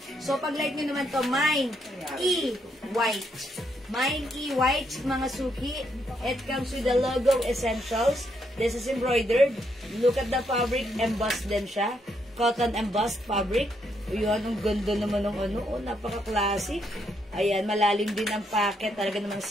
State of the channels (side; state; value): both; normal; correlation 0.76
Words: So, pag like nyo naman to, Mine E white. Mine E white, mga suki. It comes with the logo essentials. This is embroidered. Look at the fabric. Embossed din siya. Cotton embossed fabric. Yun, ang ganda naman ng napaka-classic. Ayan, malalim din ang packet. Talaga namang